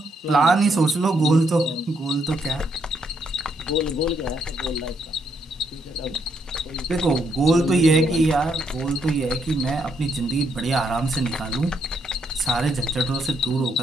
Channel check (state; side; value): normal; both; correlation 0.75